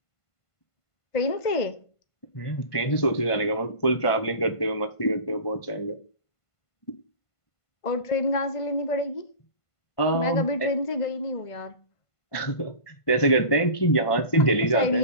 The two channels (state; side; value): late; right; 1.5 ms